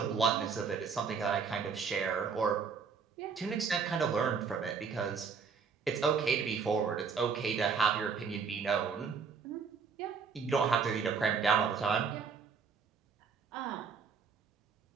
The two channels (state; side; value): quieter; left; 5.7 dB